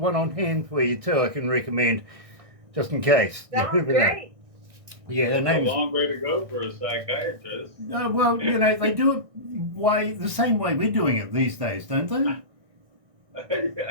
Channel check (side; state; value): left; late; 1.6 ms